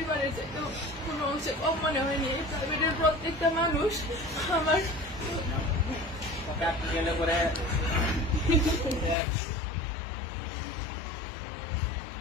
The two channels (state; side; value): drops out; right; at 9.2 s